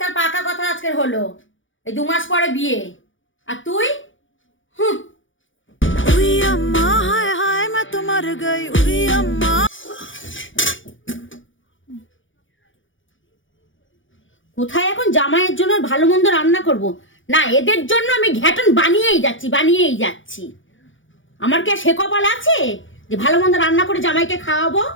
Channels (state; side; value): late; right; 0.56 ms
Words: তার পাকা কথা আজকের হলো, এই 2 মাস পরে বিয়ে। আর তুই? হুঁ। উই আম্মা হায় হায় मैं तो मर गई উই আম্মা। কোথায় এখন জামাইয়ের জন্য ভালো মন্দ রান্না করব? না, এদের জন্য আমি ঘ্যাটন বানিয়েই যাচ্ছি। আমার কি আর সে কপাল আছে যে ভালো মন্দ রান্না করে জামাইকে খাওয়াবো?